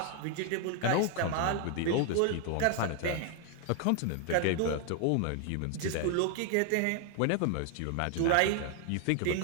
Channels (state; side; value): different; both; correlation 0.01